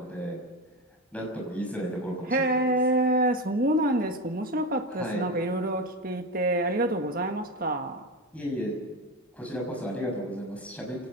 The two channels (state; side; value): normal; both; correlation 0.20